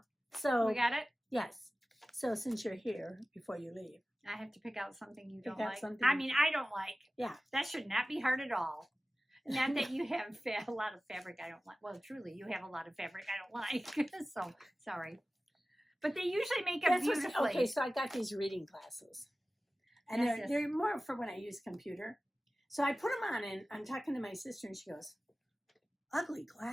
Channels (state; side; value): normal; both; correlation 0.96